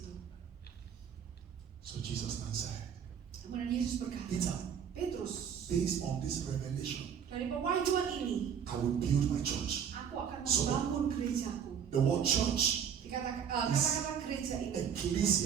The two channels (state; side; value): quieter; left; 7.8 dB